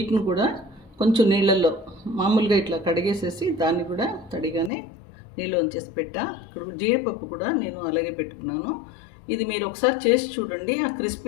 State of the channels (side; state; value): right; drops out; at 4.7 s